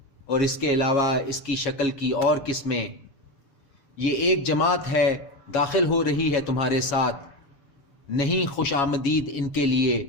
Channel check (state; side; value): late; right; 7.3 ms